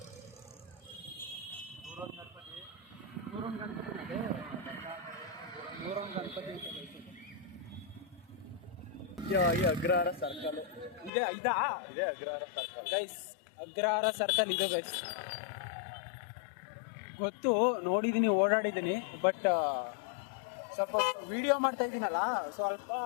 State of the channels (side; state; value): right; drops out; at 11.1 s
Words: ನೂರೊಂದು ಗಣಪತಿ ಈ ಅಗ್ರಹಾರ ಸರ್ಕಲ್ ಇದೆ. ಇದಾ ಇದೆ Agrahara circle guys, Agrahara circle ಇದೆ ಗೈಸ್. ಗೊತ್ತು, ನೋಡಿದ್ದೀನಿ, ಓಡಾಡಿದ್ದೀನಿ. ಬಟ್ ಸ್ವಲ್ಪ ವಿಡಿಯೋ ಮಾಡ್ತಾ ಇದ್ದೀನಲ್ಲ, ಸ್ವಲ್ಪ